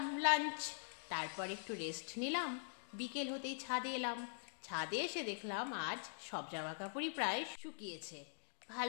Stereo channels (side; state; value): right; silent; digital silence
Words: লাঞ্চ। তারপর একটু রেস্ট নিলাম। বিকেল হতেই ছাদে এলাম। ছাদে এসে দেখলাম আজ সব জামা কাপড়ই প্রায় শুকিয়েছে।